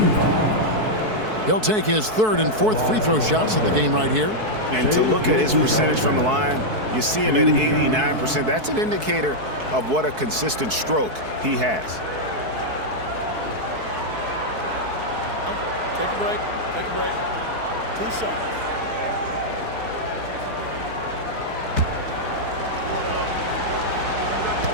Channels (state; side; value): late; left; 4.6 ms